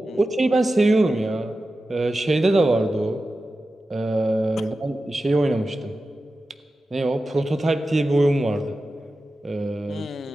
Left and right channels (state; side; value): normal; both; correlation 0.93